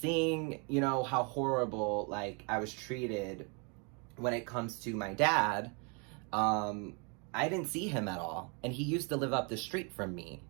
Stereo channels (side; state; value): left; quieter; 34.6 dB